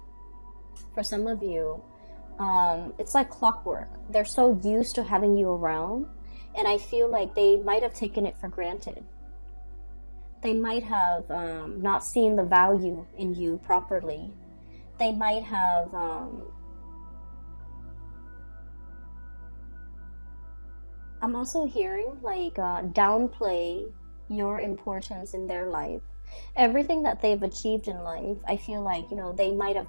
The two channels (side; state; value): both; inverted; correlation -1.00